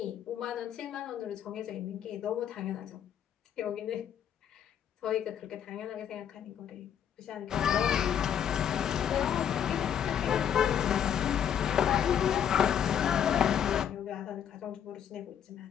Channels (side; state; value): right; quieter; 9.0 dB